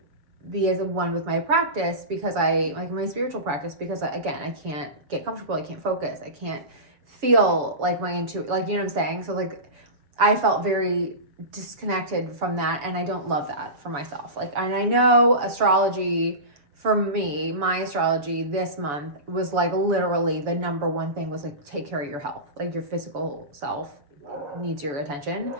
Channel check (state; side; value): late; left; 7.0 ms